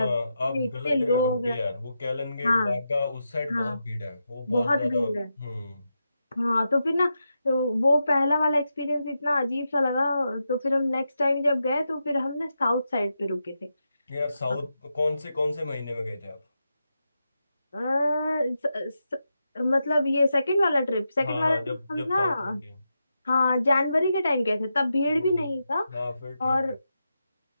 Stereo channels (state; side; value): inverted; both; correlation -0.87